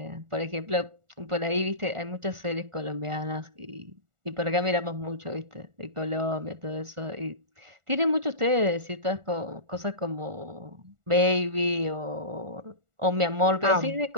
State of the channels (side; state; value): left; late; 1.4 ms